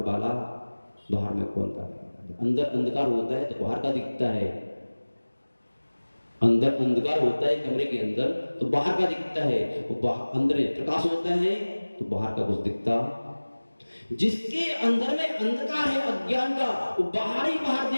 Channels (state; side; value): inverted; both; correlation -1.00